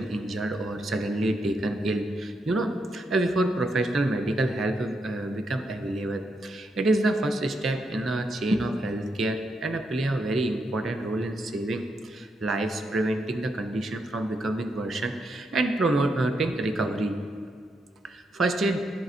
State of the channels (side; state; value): both; normal; correlation 0.81